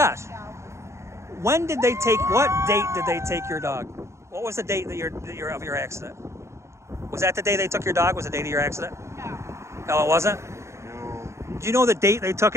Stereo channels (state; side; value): late; left; 0.14 ms